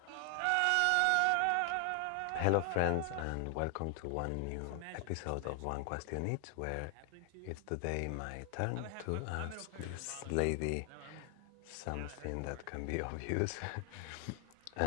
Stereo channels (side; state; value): both; different; correlation 0.00